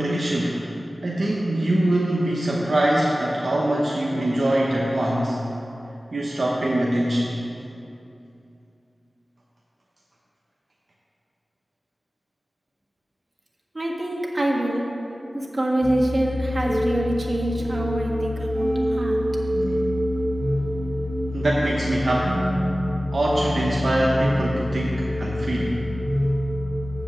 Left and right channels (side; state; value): both; normal; correlation 0.96